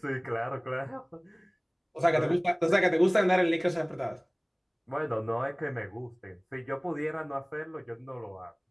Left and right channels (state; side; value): identical; both; correlation 1.00